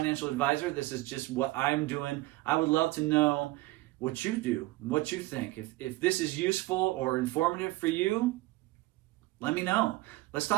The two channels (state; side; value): quieter; left; 19.5 dB